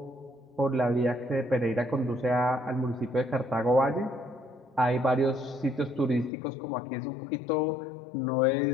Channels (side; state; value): right; drops out; at 6.3 s